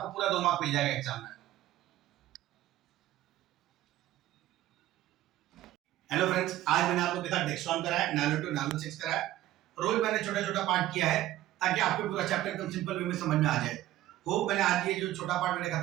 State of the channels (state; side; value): quieter; left; 14.4 dB